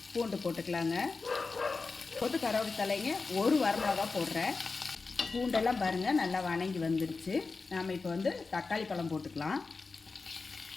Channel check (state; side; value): quieter; right; 4.2 dB